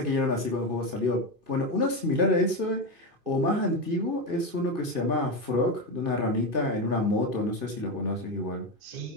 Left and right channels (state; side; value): late; left; 2.5 ms